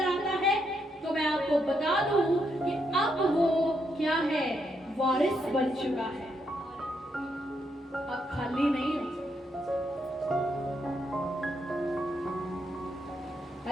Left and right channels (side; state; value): both; normal; correlation 0.78